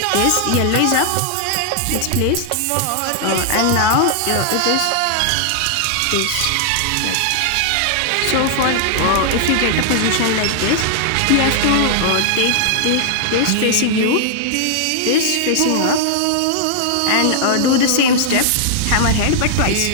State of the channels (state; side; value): different; both; correlation 0.00